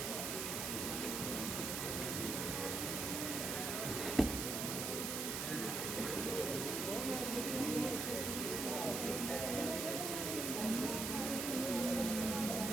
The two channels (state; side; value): noise; right; hiss, 2 dB below the sound